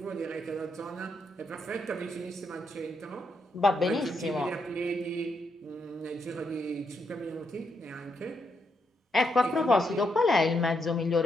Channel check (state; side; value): normal; both; correlation 0.80